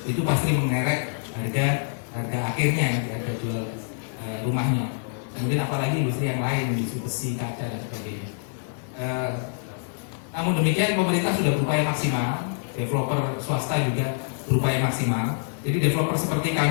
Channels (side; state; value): right; silent; digital silence